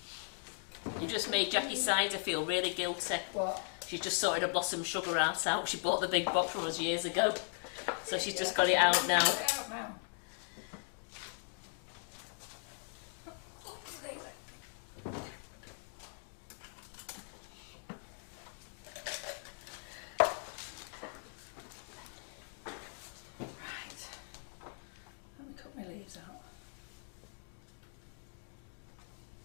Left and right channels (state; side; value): silent; right; 52 dB below the other